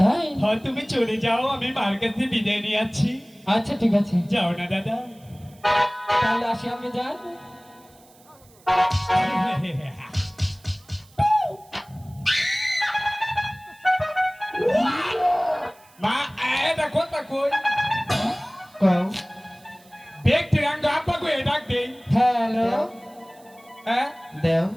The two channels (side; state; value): right; noise; hiss, 28 dB below the sound